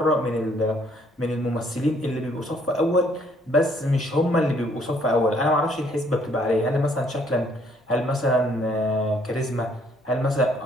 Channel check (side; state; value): both; normal; correlation 0.65